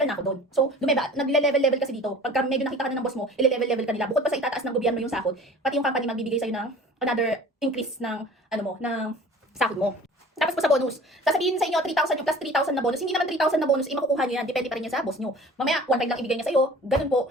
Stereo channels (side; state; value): both; normal; correlation 0.44